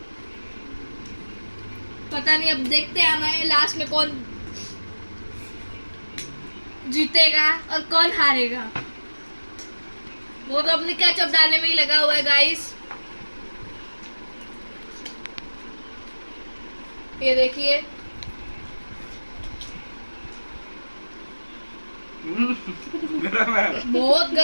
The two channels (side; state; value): both; inverted; correlation -1.00